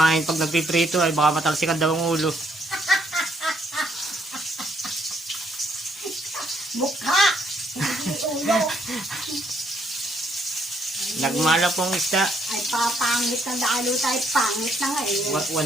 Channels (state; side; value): normal; both; correlation 0.70